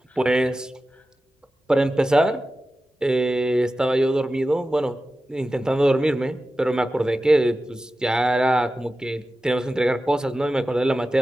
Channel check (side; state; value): both; normal; correlation 0.94